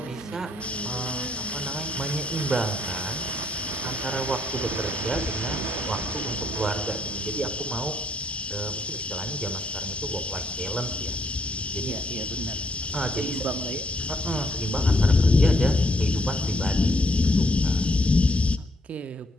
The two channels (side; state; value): both; normal; correlation 0.71